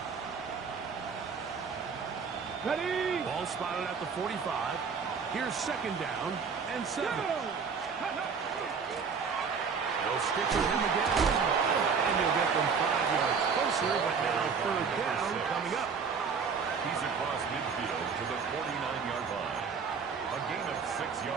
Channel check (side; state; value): left; quieter; 5.8 dB